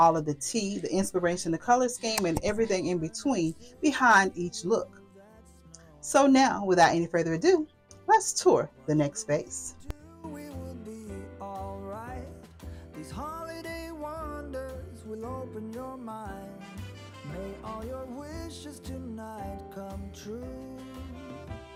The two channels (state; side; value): identical; both; correlation 1.00